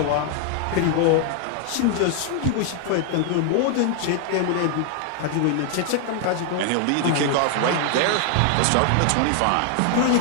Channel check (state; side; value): different; both; correlation 0.00